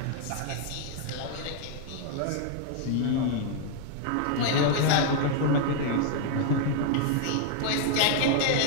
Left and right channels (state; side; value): different; both; correlation 0.00